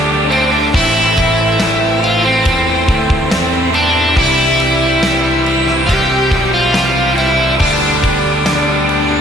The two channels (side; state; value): both; normal; correlation 0.65